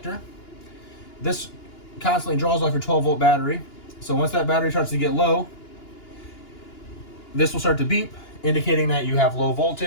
This constantly draws off your 12-volt battery. So once that battery starts to get low, this will start to beep, indicating that you have low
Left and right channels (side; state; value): right; late; 2.9 ms